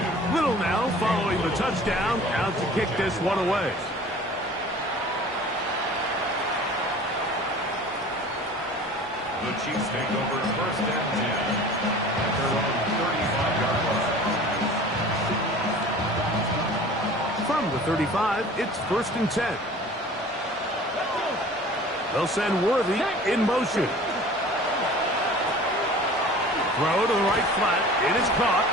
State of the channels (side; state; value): both; normal; correlation 0.44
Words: Little now following the touchdown, out to kick this one away. The Chiefs take over first and 10 at their own 35-yard line. From the 35, it's first and 10. They'll send Worthy in motion. Throw to the right flat. It is caught.